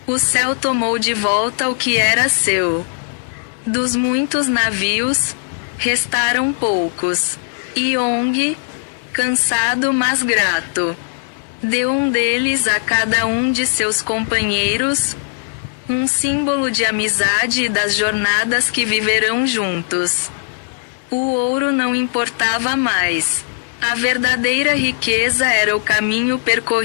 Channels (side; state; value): right; silent; 61 dB below the other